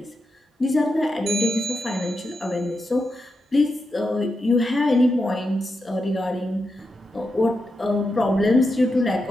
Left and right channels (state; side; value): normal; both; correlation 0.87